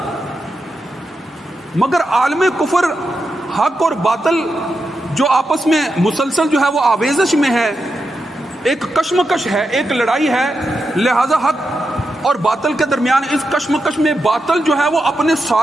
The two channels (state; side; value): normal; both; correlation 0.87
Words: مگر عالم کفر حق اور باطل جو آپس میں مسلسل جو ہے وہ آویزش میں ہے، ایک کشمکش ہے، ایک لڑائی ہے، لہذا حق اور باطل کے درمیان اس کشمکش میں باطل جو ہے وہ اپنے